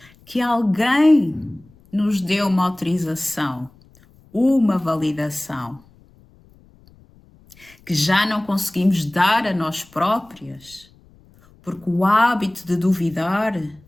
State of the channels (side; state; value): left; noise; rumble, 28 dB below the sound